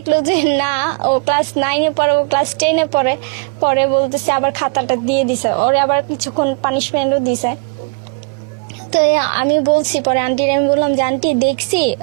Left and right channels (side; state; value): left; quieter; 35.2 dB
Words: যে না ও ক্লাস 9-এ পড়ে, ও ক্লাস 10-এ পড়ে, পরে বলতেছে আবার খাতাটা দিয়ে দিছে ওরে, আবার কিছুক্ষণ পানিশমেন্টও দিছে। তো আমি বলছি, পরে আন্টির আমি বললাম যে আন্টি দেখছি